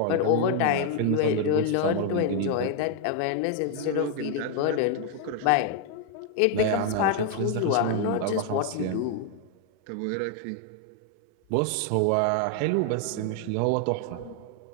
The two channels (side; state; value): both; different; correlation 0.00